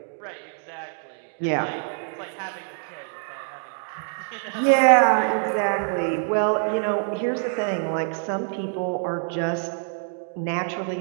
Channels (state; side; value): silent; left; 57 dB below the other